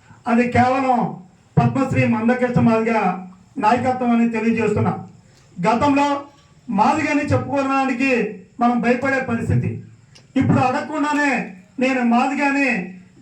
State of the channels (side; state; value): both; identical; correlation 1.00